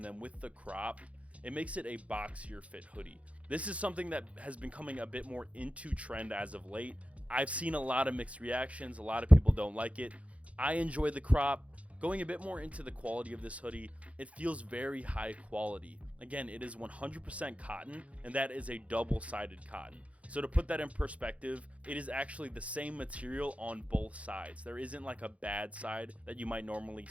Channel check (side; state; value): left; late; 0.064 ms